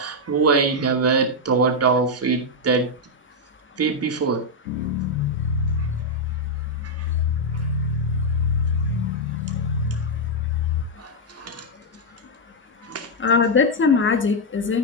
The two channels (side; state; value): both; normal; correlation -0.01